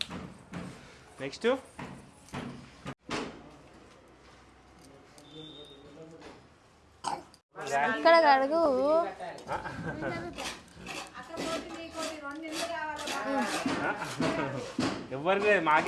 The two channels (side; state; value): both; identical; correlation 1.00